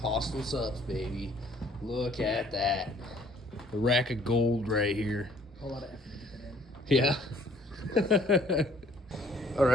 Hostile Subs, baby. Look at that. A rack of gold right here. A lot of effort to get that in. Yeah. All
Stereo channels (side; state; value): both; normal; correlation 0.60